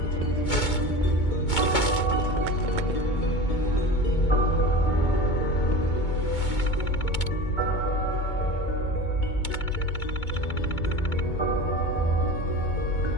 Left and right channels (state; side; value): late; right; 2.2 ms